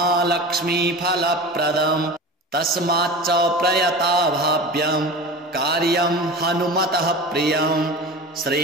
तस्माच्च प्रयता भाव्यं कार्यं हनुमतः प्रियं श्री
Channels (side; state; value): both; normal; correlation 0.33